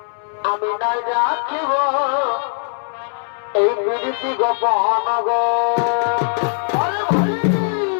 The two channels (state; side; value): silent; right; 66 dB below the other